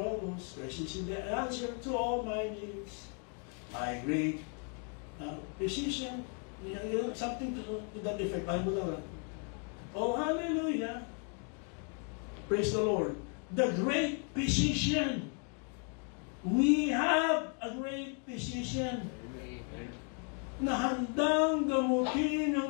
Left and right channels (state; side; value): quieter; right; 39.9 dB